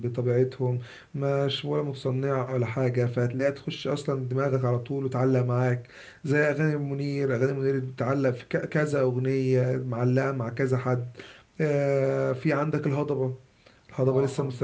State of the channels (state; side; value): identical; both; correlation 1.00